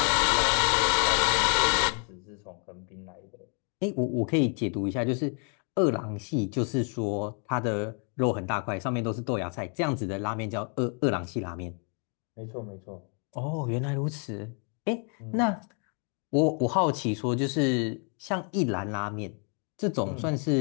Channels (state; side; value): quieter; right; 40.0 dB